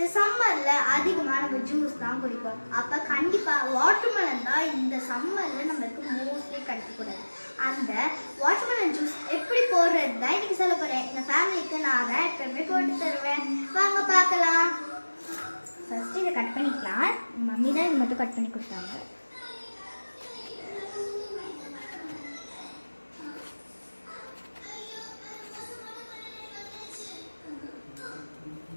சம்மர்ல அதிகமா நம்ம ஜூஸ் தான் குடிப்போம். அப்ப கண்டிப்பா வாட்டர்மெலன் தான் இந்த சம்மர்ல நமக்கு மோஸ்ட்லி கிடைக்க கூடாது. அந்த வாட்டர்மெலன் ஜூஸ் எப்படி போடுறது தான் இன்னைக்கு சொல்ல போறேன். எங்க ஃபேமிலிக்கு நான் தான் எப்பவுமே போட்டு தருவேன். வாங்க பார்க்கலாம். ஃபர்ஸ்ட் இதை கட் பண்ணிக்கலாம். மம்மி தான் இது மட்டும் கட் பண்ணி கொடுத்தாங்க.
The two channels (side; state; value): both; inverted; correlation -1.00